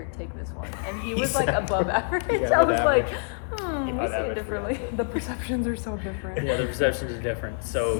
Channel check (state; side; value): silent; right; 61 dB below the other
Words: take this one. And he was like above average. You got I an was average. like, You got we'll an see average it differently. fiance. The perceptions are so different. Yeah, the perceptions are different. So